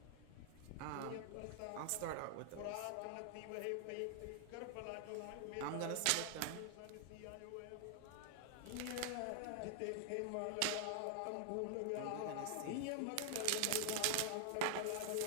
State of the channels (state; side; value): different; both; correlation 0.00